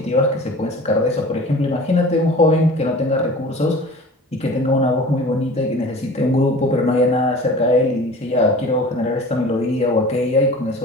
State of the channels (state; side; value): normal; both; correlation 0.41